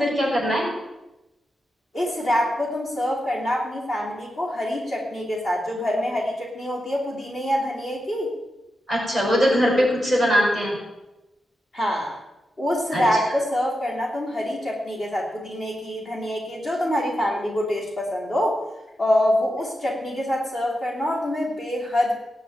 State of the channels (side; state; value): both; normal; correlation 0.88